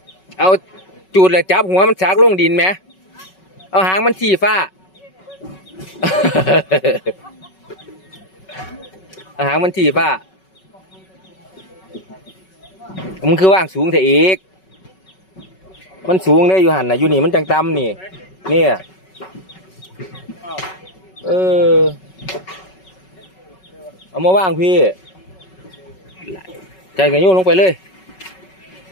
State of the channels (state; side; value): late; right; 5.3 ms